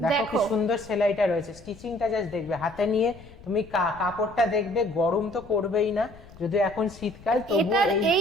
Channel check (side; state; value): left; noise; rumble, 20 dB below the sound